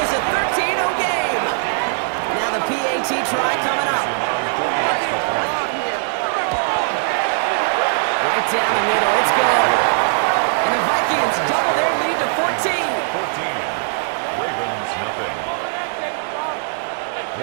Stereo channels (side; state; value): left; silent; 66 dB below the other